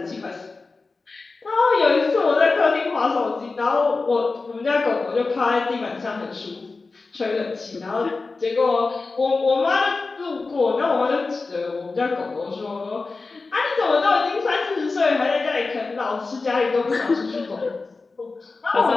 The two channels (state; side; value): quieter; right; 3.9 dB